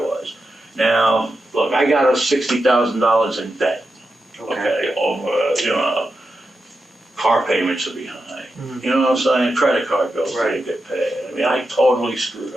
was. Now, look, I got us $60,000 in debt. Okay, over, car payments are behind. Mm-hmm. You know what I'm saying? Credit card bills didn't get paid. I mean, I totally screwed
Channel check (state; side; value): normal; both; correlation 0.89